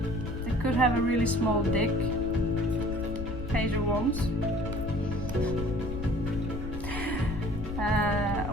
They could have a really small dick. Page of Wands.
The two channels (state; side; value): noise; left; rumble, 6 dB below the sound